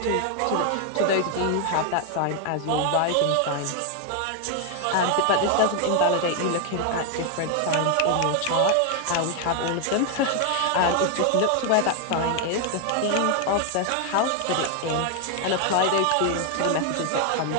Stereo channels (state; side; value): different; both; correlation 0.00